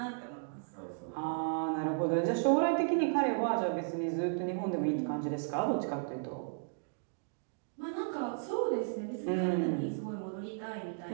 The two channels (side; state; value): left; silent; digital silence